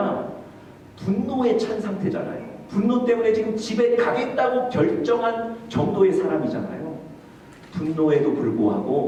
분노에 찬 상태잖아요. 분노 때문에 지금 집에 가겠다고 결정한 정도의 사람이잖아요. 분노에도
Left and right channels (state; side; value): identical; both; correlation 1.00